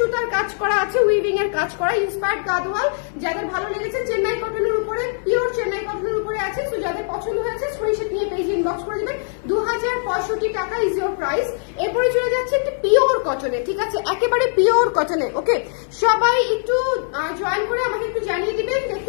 কাজ করা আছে, উইভিং এর কাজ করা, ইন্সপায়ার্ড গাদোয়াল। যাদের ভালো লেগেছে চেন্নাই কটনের উপরে, পিওর চেন্নাই কটনের উপরে আছে। তো যাদের পছন্দ হয়েছে স্ক্রিনশট নিয়ে পেজে ইনবক্স করে দিবেন। 2065 টাকা ইজ ইওর প্রাইস। এরপরে চলে যাচ্ছে একটি পিওর কটনে, ঠিক আছে, একেবারে পিওর কটনে। ওকে, সবাই একটু জয়েন করে আমাকে একটু জানিয়ে দিবেন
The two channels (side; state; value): right; silent; 61 dB below the other